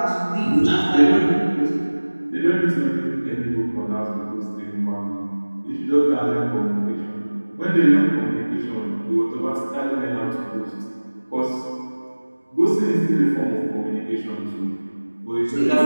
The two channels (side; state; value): both; inverted; correlation -1.00